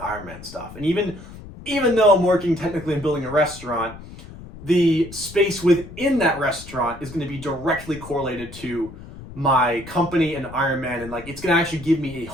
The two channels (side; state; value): left; noise; rumble, 15 dB below the sound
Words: stuff. And even though I'm working technically and building a restaurant, the space within that restaurant is going to be directly correlated to my company and Ironman, and like it's going to actually give me a